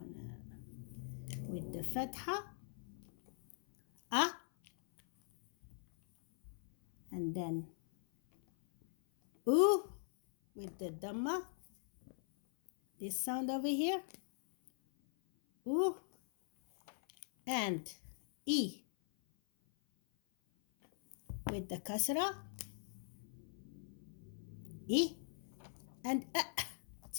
with the fatha, and then with the dhamma, this sound over here, and e with the kasra, e, and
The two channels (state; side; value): silent; right; 50 dB below the other